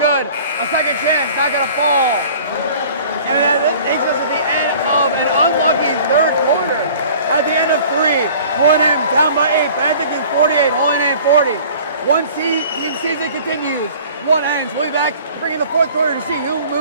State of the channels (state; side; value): inverted; both; correlation -0.48